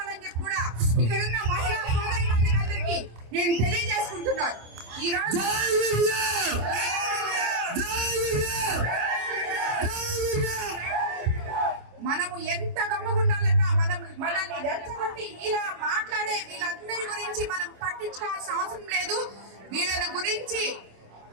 చెప్పి కూడా ఇక్కడున్న మహిళా సోదరులందరికీ అందరికీ నేను తెలియజేసుకుంటున్నాను. ఈ రోజు మనము ఎంత గమ్మగుండాలన్నా మనల్ని రెచ్చగొట్టి ఇలా మాట్లాడే వీళ్ళందరి గురించి మనం పట్టించుకోవాల్సిన అవసరం లేదు. వీళ్ళ గురించి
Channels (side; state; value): left; late; 26 ms